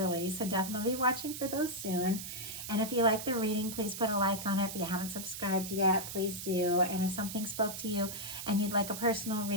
So definitely be watching for those soon. And if you like the reading, please put a like on it. If you haven't subscribed yet, please do. And if something spoke to you and you'd like a personal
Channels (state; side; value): noise; right; hiss, 8 dB below the sound